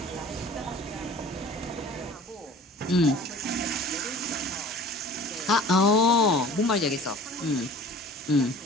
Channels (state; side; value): normal; both; correlation 0.44